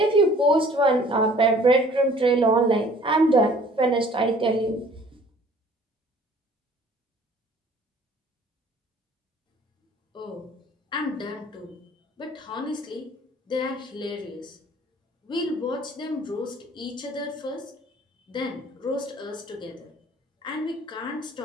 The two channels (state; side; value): normal; both; correlation 0.53